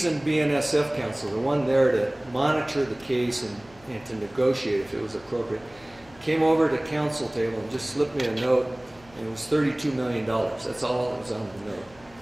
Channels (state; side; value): noise; left; hum, 26 dB below the sound